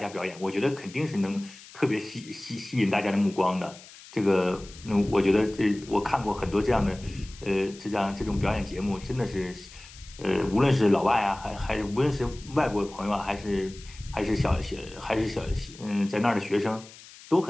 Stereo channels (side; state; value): left; noise; hiss, 19 dB below the sound